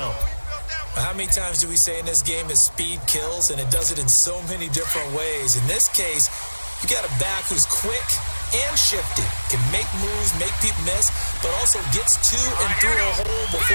How many times do we say in this game that speed kills, and it does it in so many different ways? In this case, you got a back who's quick and shifty, can make moves, make people miss, but also gets to and through a hole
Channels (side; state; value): both; inverted; correlation -1.00